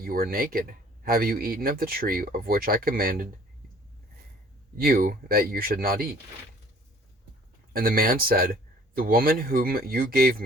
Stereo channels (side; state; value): both; normal; correlation 0.54